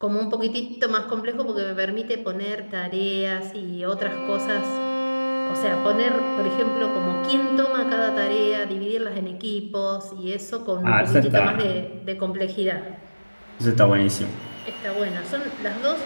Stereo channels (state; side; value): inverted; both; correlation -1.00